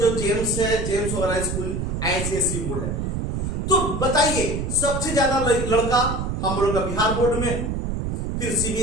जेम्स है, जेम्स वगैरह स्कूल ICSC बोर्ड है। तो बताइए सबसे ज्यादा लड़का हम लोग का बिहार बोर्ड में, फिर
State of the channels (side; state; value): right; noise; rumble, 2 dB below the sound